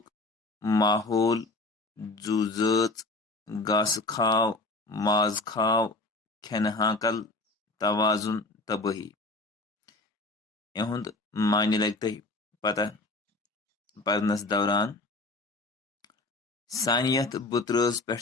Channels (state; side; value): quieter; right; 3.2 dB